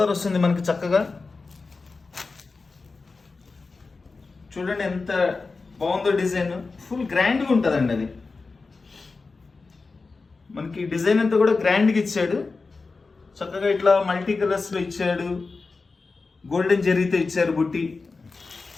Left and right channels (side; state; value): right; quieter; 4.1 dB